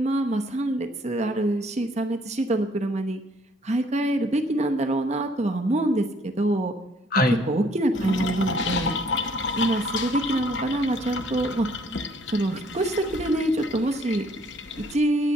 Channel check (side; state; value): both; normal; correlation 0.63